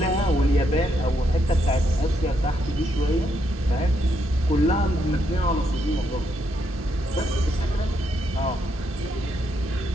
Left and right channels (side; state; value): both; normal; correlation 0.77